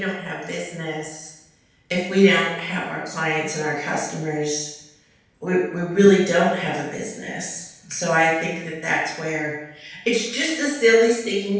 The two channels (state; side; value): identical; both; correlation 1.00